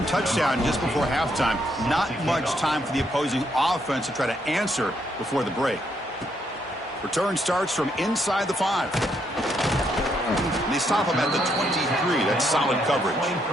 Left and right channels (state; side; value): normal; both; correlation 0.74